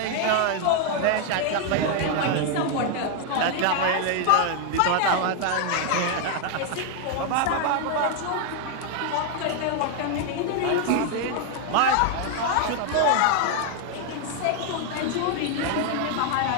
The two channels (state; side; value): different; both; correlation 0.00